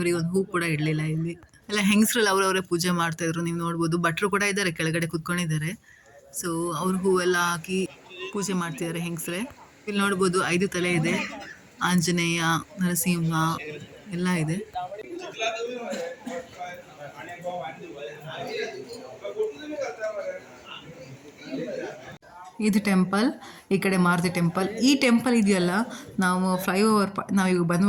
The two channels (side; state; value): both; identical; correlation 1.00